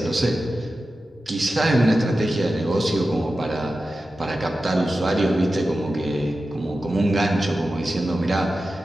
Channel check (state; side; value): normal; both; correlation 0.93